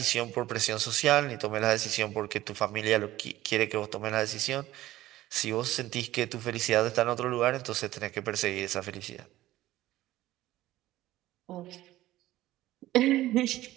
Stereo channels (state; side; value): quieter; left; 15.7 dB